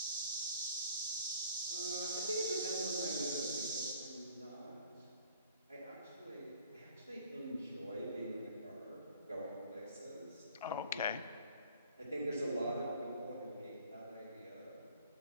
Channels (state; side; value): inverted; both; correlation -0.54